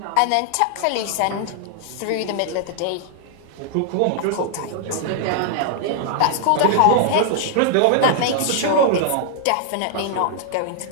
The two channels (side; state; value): both; different; correlation -0.01